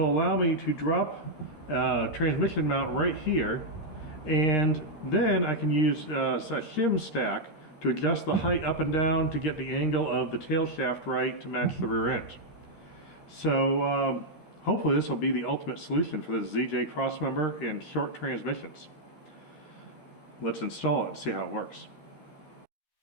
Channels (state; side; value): late; right; 13 ms